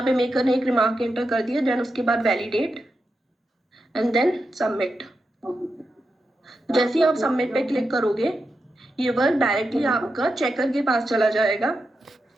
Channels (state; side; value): normal; both; correlation 0.88